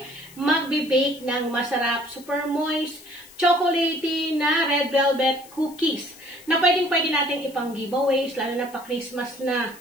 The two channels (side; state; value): left; noise; hiss, 21 dB below the sound